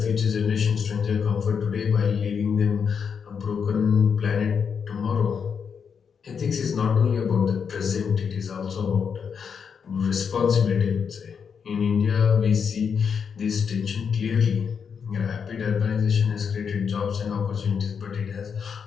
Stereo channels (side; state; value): right; quieter; 6.6 dB